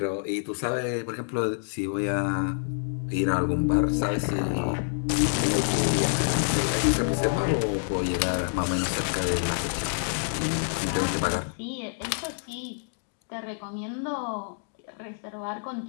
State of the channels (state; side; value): silent; right; digital silence